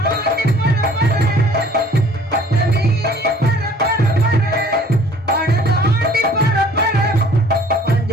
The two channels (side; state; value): both; normal; correlation 0.53